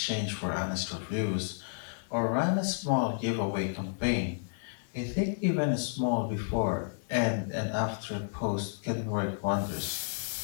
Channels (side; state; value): right; silent; digital silence